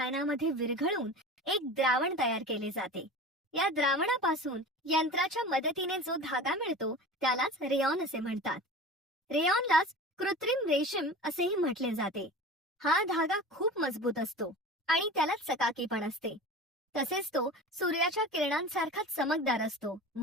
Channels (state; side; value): normal; both; correlation 0.35